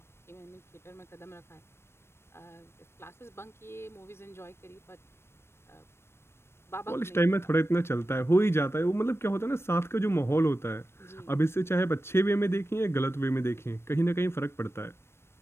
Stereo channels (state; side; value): late; right; 0.12 ms